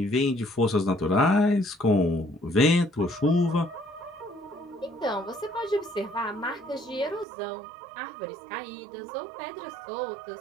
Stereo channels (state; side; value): drops out; left; at 7.2 s